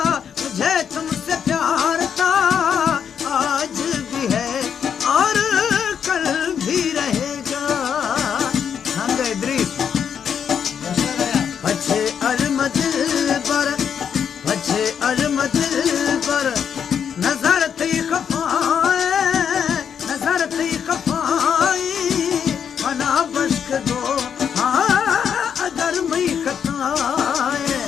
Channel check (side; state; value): right; quieter; 7.8 dB